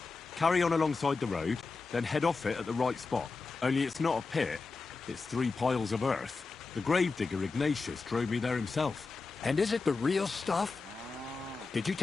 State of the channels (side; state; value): right; quieter; 4.2 dB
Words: carry on alongside the road, then head off it at the right spot. Only it's not a pit, it's 3 piles of earth. The gravedigger Ignatius drove me there himself. And is it the real stuff? Did you